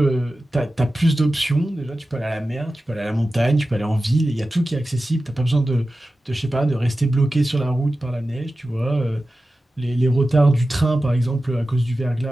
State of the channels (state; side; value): normal; both; correlation 0.94